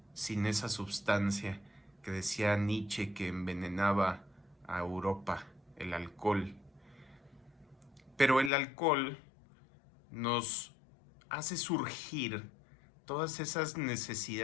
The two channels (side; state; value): right; drops out; at 8.5 s